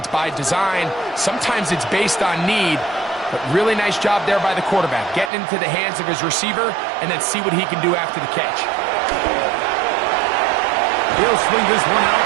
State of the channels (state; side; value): drops out; left; at 5.3 s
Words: by design, sometimes it's based on need. But really nice job there by the quarterback, getting into the hands of his receiver and then see what he can do after the catch. He'll swing this one out